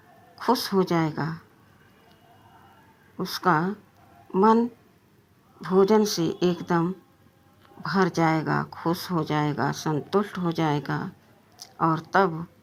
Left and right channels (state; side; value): identical; both; correlation 1.00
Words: खुश हो जाएगा। उसका मन भोजन से एकदम भर जाएगा, खुश हो जाएगा, संतुष्ट हो जाएगा। और तब